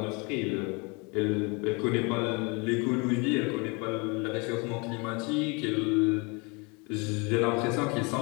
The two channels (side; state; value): right; quieter; 30.1 dB